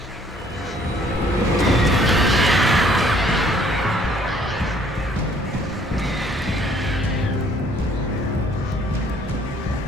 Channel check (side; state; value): both; normal; correlation 0.61